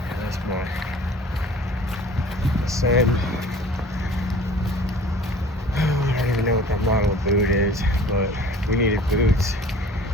Yeah, that's my sand. I don't even know what that model of boot is, but we needed boots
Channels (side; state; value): both; normal; correlation 0.47